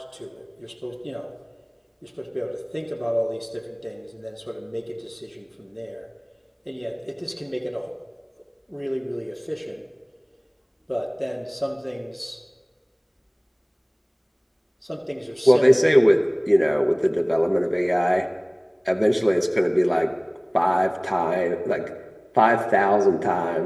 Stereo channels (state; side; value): identical; both; correlation 1.00